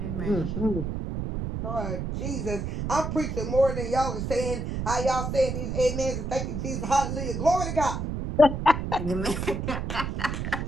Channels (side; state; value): right; noise; rumble, 3 dB below the sound